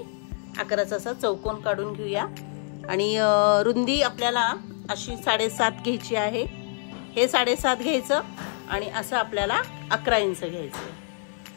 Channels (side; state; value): right; silent; 61 dB below the other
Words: 11चा असा चौकोन काढून घेऊया आणि रुंदी आपल्याला अशी 7.5 घ्यायची आहे। हे 7.5 घ्यायचं आणि असं आपल्याला 11 इंच